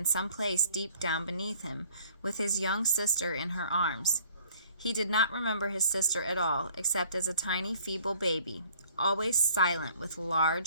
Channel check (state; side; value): inverted; both; correlation -0.56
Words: some place deep down beneath him, with his young sister in her arms. He did not remember his sister at all, except as a tiny, feeble baby, always silent with